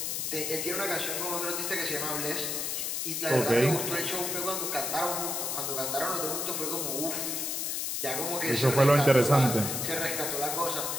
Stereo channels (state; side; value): noise; left; hiss, 1 dB below the sound